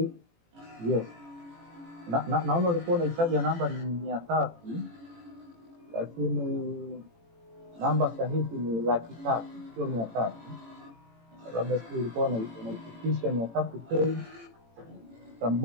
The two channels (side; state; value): left; late; 18 ms